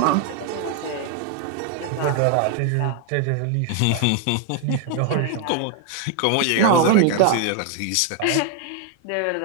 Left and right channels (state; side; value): different; both; correlation 0.01